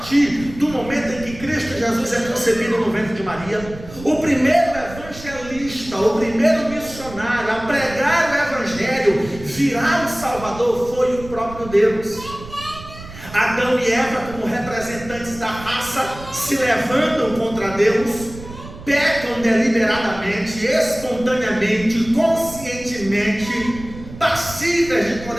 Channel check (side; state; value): right; noise; rumble, 15 dB below the sound